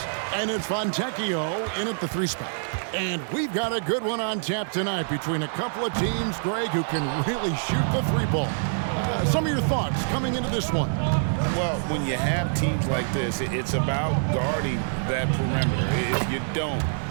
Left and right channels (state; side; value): silent; left; digital silence